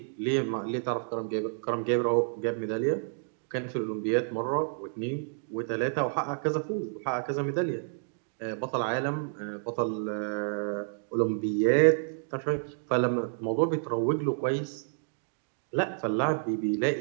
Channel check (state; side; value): silent; left; digital silence